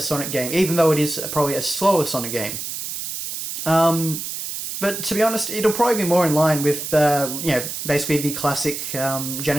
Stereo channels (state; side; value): noise; right; hiss, 6 dB below the sound